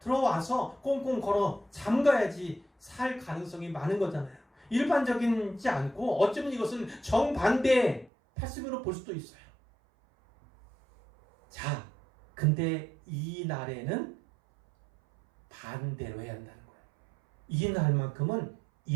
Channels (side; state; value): left; drops out; at 8.1 s